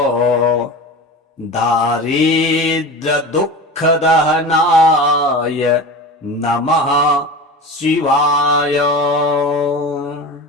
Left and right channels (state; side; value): normal; both; correlation 0.31